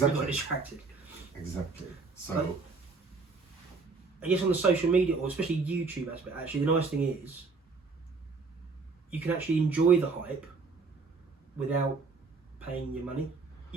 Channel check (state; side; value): quieter; left; 4.3 dB